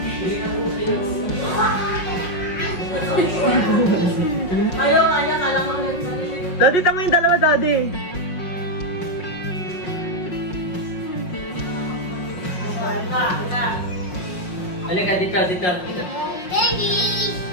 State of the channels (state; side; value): late; right; 5.5 ms